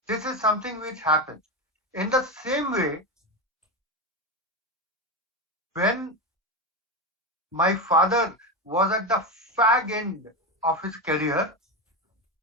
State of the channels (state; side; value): normal; both; correlation 0.15